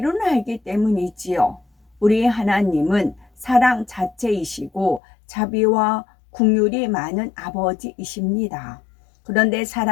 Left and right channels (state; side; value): drops out; right; at 5.0 s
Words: 알기 때문이지요. 우리 하나님은 사랑 자체이시고 자비와 긍휼이 많은 아버지이십니다. 그런데